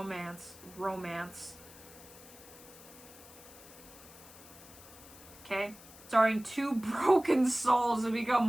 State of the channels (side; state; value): left; noise; hiss, 19 dB below the sound